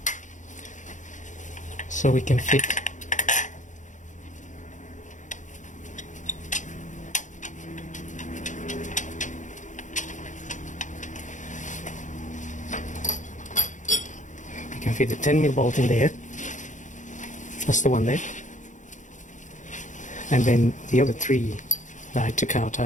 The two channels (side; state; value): right; late; 0.36 ms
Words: So we can fit the 10mm bolt in there. That's the one there. And then the other three that I took out